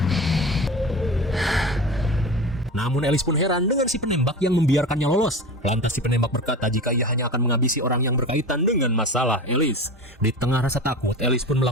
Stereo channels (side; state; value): both; normal; correlation 0.30